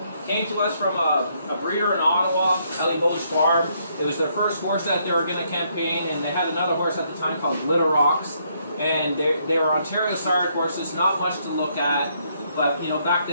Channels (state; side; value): inverted; both; correlation -0.72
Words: came to us from a breeder in Ottawa, Ellie Boge Farm. It was their first horse that they were going to campaign, and they had another horse at the time called Glitter Rocks. And they were Ontario sired horses, not much to look at, but you know, back